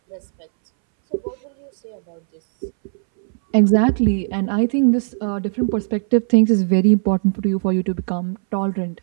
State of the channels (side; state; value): left; silent; 63 dB below the other